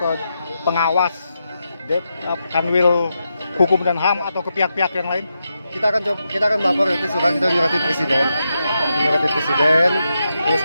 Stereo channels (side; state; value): both; inverted; correlation -0.86